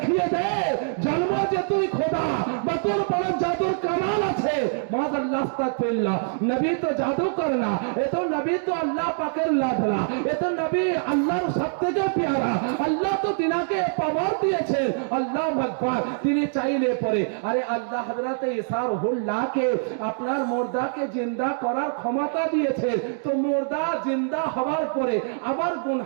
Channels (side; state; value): left; silent; digital silence